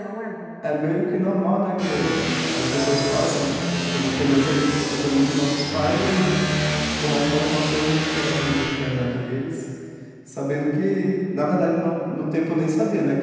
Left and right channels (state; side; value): identical; both; correlation 1.00